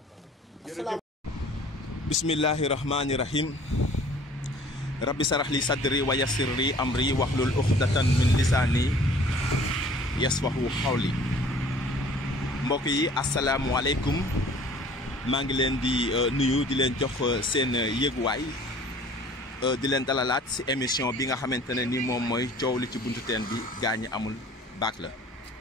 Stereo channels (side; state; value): both; normal; correlation 0.51